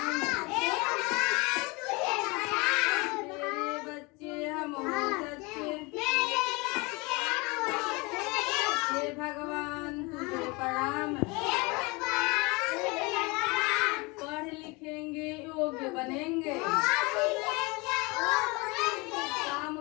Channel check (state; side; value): quieter; right; 26.5 dB